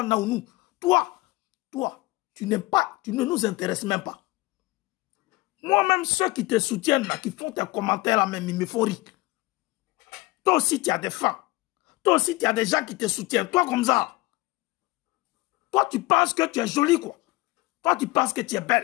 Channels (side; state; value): right; quieter; 20.6 dB